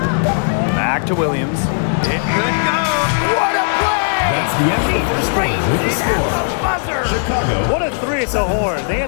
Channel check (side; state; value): right; silent; digital silence